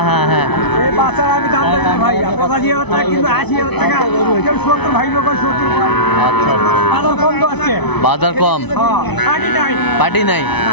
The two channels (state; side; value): late; right; 0.99 ms